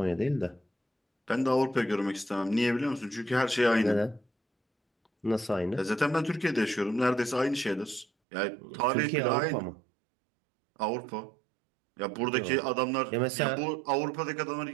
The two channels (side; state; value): left; drops out; at 8.1 s